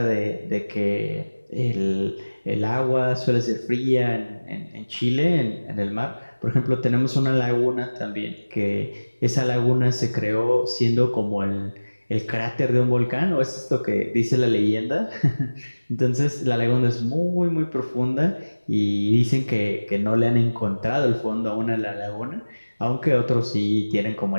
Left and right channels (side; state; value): both; inverted; correlation -1.00